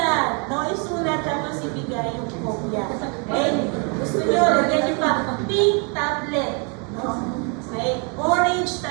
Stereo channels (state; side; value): quieter; left; 35.7 dB